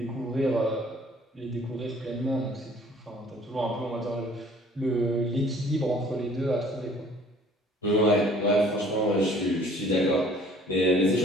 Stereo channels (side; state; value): both; normal; correlation 0.54